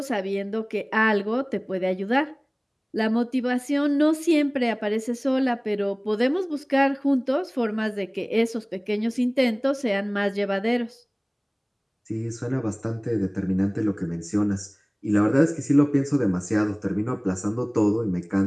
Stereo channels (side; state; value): both; identical; correlation 1.00